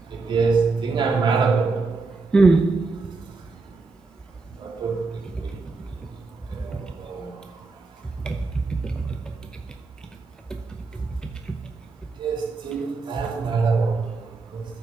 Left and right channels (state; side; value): quieter; left; 3.9 dB